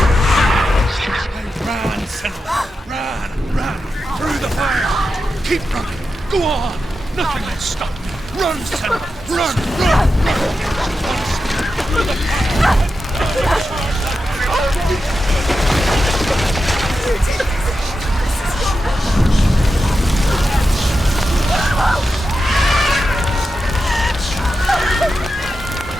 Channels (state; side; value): normal; both; correlation 0.90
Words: Keep running! Go on! Nothing will stop me! Run, Senua! Run! Run! Through the